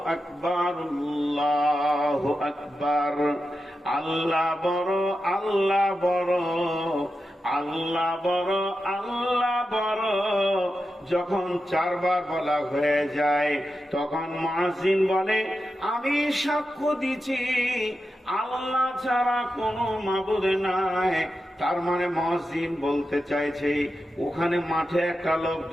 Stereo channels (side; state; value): both; normal; correlation 0.90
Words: আকবার, আল্লাহু আকবার, আল্লাহ বড়, আল্লাহ বড়, আল্লাহ বড়, আল্লাহ বড়। যখন 4 বার বলা হয়ে যায় তখন মুয়াজ্জিন বলে আমি সাক্ষ্য দিচ্ছি আল্লাহ ছাড়া কোনো মাবুদ নাই। তার মানে মুয়াজ্জিন বলতে চাইছে ওখানে মাঠে একটা লোক,